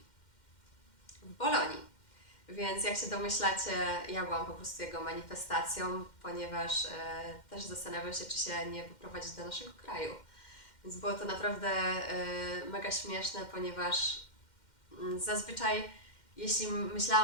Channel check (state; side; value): late; right; 2.1 ms